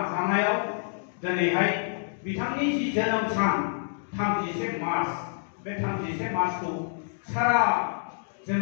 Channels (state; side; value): silent; right; digital silence